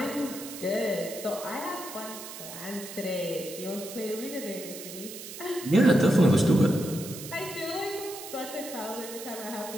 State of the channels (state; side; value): noise; right; hiss, 11 dB below the sound